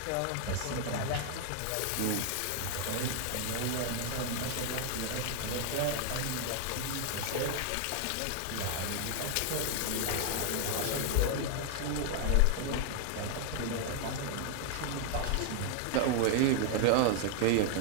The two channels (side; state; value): both; different; correlation 0.00